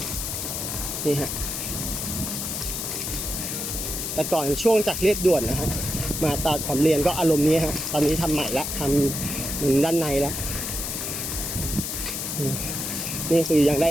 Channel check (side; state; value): left; noise; hiss, 3 dB below the sound